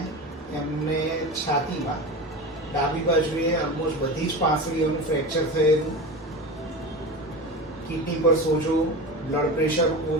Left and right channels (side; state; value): both; normal; correlation 0.27